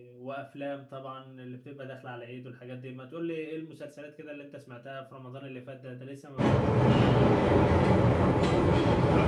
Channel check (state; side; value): identical; both; correlation 1.00